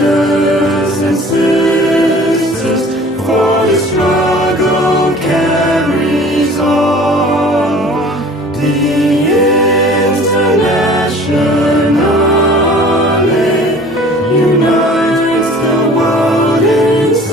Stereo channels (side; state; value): both; normal; correlation 0.47